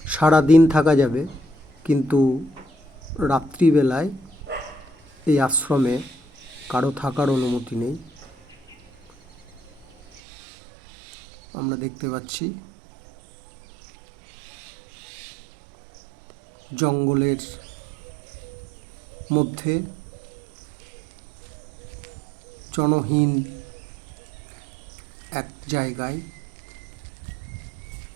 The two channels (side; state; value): left; drops out; at 10.2 s